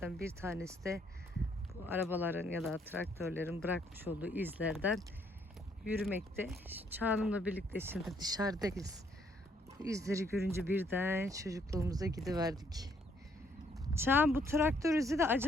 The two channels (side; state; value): both; normal; correlation 0.68